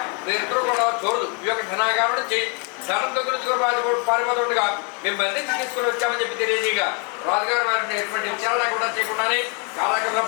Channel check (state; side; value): quieter; right; 36.1 dB